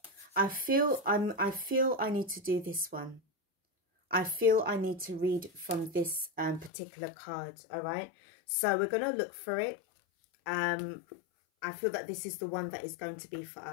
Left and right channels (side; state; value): right; drops out; at 6.7 s